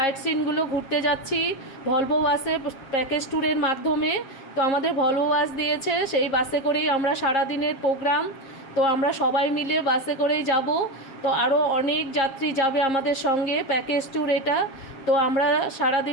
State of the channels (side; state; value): right; late; 7.4 ms